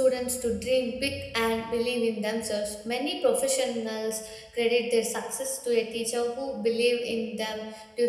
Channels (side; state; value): both; identical; correlation 1.00